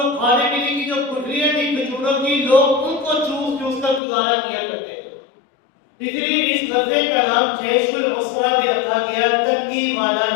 کھانے پینے کی جو گٹھلیاں تھی کھجوروں کی، لوگ ان کو چوس چوس کر گزارا کیا کرتے تھے، اس لیے اس غزوے کا نام جیش العسرہ بھی رکھا گیا، تنگی والا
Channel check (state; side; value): drops out; right; at 4.0 s